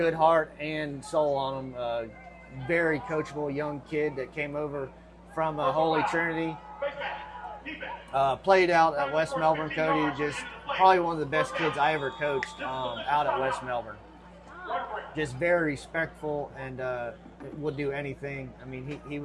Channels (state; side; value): identical; both; correlation 1.00